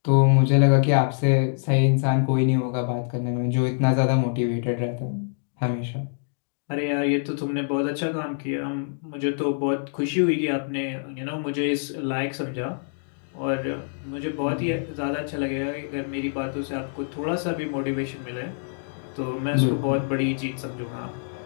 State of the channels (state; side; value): silent; right; digital silence